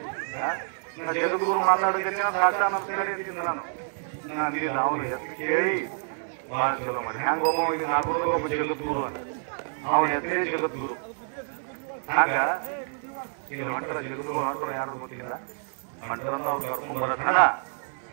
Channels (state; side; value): silent; left; 60 dB below the other